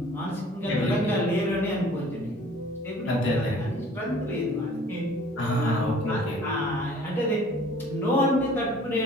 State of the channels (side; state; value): both; normal; correlation 0.51